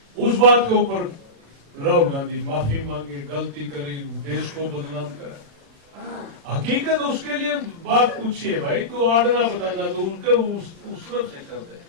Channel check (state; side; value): late; left; 36 ms